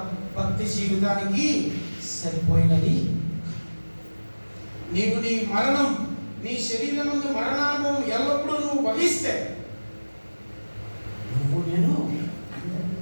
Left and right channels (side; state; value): both; inverted; correlation -1.00